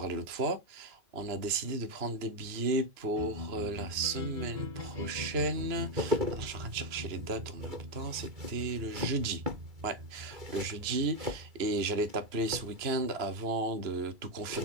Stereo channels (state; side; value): late; left; 2.9 ms